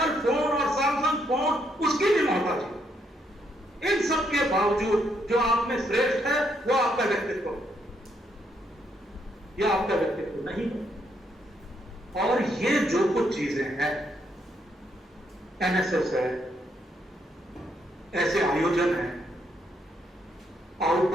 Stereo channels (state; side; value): normal; both; correlation 0.75